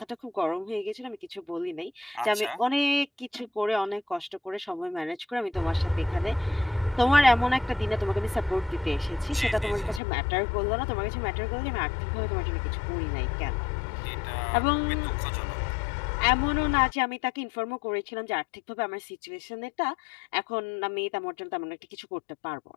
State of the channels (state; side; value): drops out; right; at 10.0 s